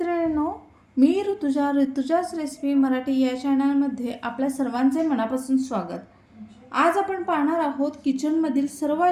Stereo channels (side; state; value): both; identical; correlation 1.00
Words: मी ऋतुजाच रेसिपी मराठी या चॅनलमध्ये आपल्या सर्वांचे मनापासून स्वागत. आज आपण पाहणार आहोत किचनमधील